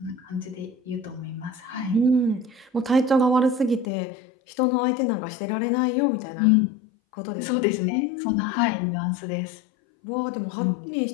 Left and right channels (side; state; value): right; drops out; at 3.9 s